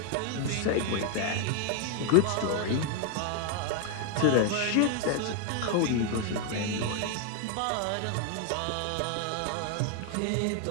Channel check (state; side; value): different; both; correlation 0.00